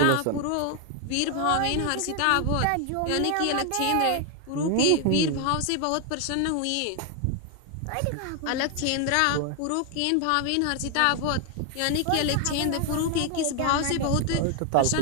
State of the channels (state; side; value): different; both; correlation 0.00